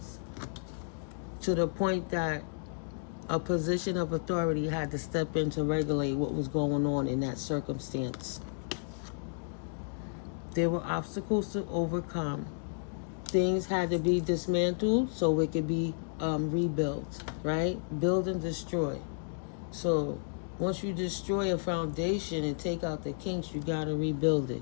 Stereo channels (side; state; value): right; silent; digital silence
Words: To the point that a position of authority had to step in to regulate what was going on in that circumstance. There were obstacles to overcome. Things had to be dismantled so it could be rebuilt, right? Build and destroy. So once you destroy a foundation and take out the kinks, you got to rebuild it.